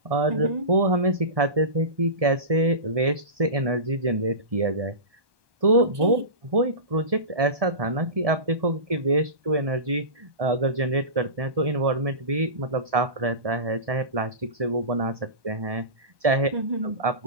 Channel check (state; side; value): late; left; 1.2 ms